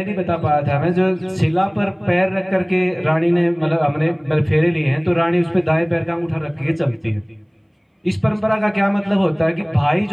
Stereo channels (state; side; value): identical; both; correlation 1.00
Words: नहीं बता पाया था मैं, जो शिला पर पैर रख करके रानी ने मतलब हमने फेरे लिए हैं, तो रानी उस पर दाएं पैर का अंगूठा रख के चलती है। इस परंपरा का क्या मतलब होता है कि भाई